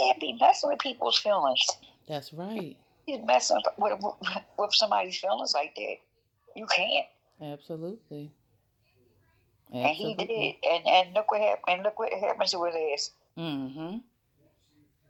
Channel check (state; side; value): identical; both; correlation 1.00